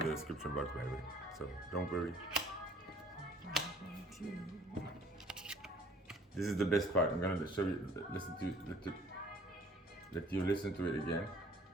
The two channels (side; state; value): both; normal; correlation 0.55